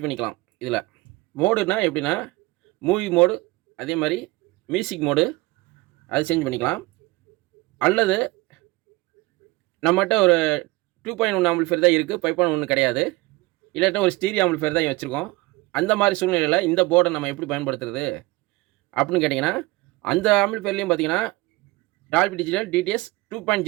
பண்ணிக்கலாம். இதில் மோடுனா எப்படின்னா மூவி மோடு, அதே மாதிரி மியூசிக் மோடு அது சேஞ்ச் பண்ணிக்கலாம். அல்லது நம்மகிட்ட ஒரு 2.1 ஆம்பிளிஃபையர் தான் இருக்குது, 5.1 கிடையாது. இல்லாட்டா ஒரு ஸ்டீரியோ ஆம்பிளிஃபையர் தான் வச்சுருக்கோம். அந்த மாதிரி சூழ்நிலையில் இந்த போர்டை நம்ம எப்படி பயன்படுத்துறது அப்படின்னு கேட்டிங்கன்னா, அந்த ஆம்பிளிஃபையர்லையும் பார்த்தீங்கன்னா டால்பி டிஜிட்டல் டிடிஎஸ்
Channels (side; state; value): left; quieter; 21.7 dB